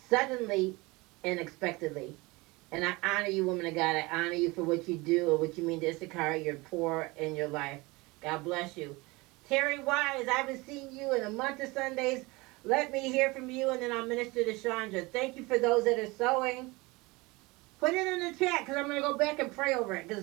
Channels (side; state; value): left; quieter; 23.6 dB